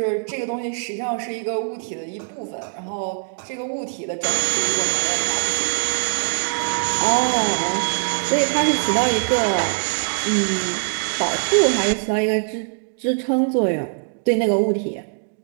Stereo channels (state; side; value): silent; left; digital silence